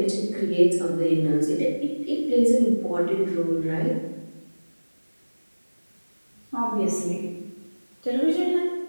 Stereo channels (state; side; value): inverted; both; correlation -1.00